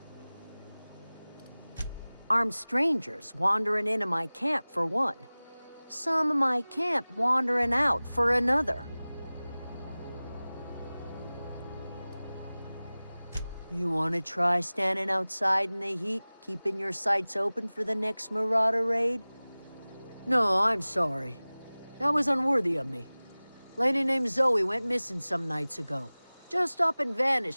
Armed strangers wandering into my camp for one. Some of my camp wandering out for another. You want to try standing outside in the heat, keeping your sights open for the next marauder raid? No, I'm sorry. That was unworthy of me. Lady named Zoe went missing some nights ago. Just up and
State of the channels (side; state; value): both; inverted; correlation -0.99